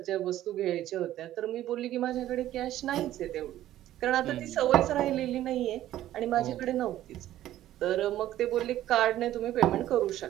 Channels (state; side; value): quieter; left; 13.4 dB